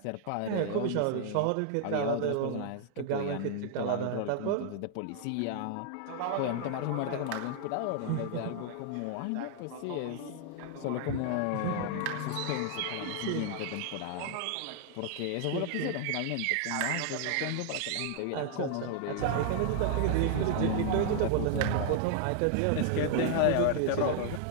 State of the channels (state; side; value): different; both; correlation 0.00